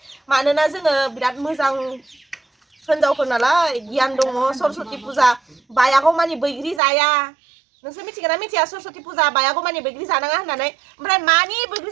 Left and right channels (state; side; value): drops out; left; at 6.8 s